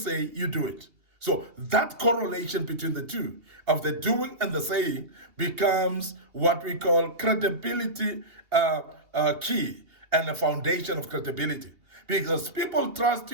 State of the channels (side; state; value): left; late; 2.8 ms